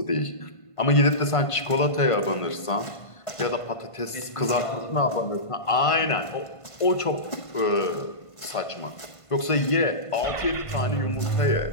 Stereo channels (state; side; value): late; right; 1.5 ms